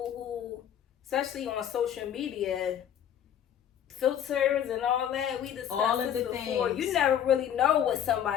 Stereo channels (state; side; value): quieter; right; 9.7 dB